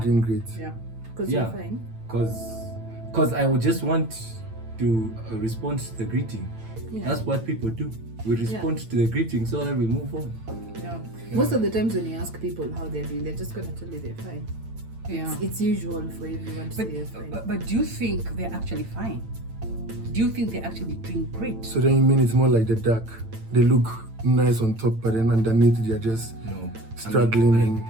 doing great. Yeah. Because Yeah. you're fine. Cause I would just want to respond to the greeting. Yeah. That's what people do. We respond to the greeting so that we move on. Yeah. Most of the times when you ask people how they're doing, they're just gonna tell you they're fine. Yeah. It's usual for everyone to say they're fine. But do you think they're actually fine? Do you think they're actually doing great? So then you mean it's more like the duck? They look nice on top, but then underneath they're just No. struggling I and mean,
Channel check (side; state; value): left; late; 8.9 ms